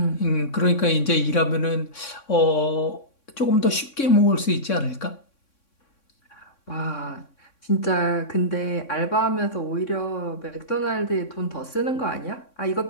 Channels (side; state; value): right; late; 3.6 ms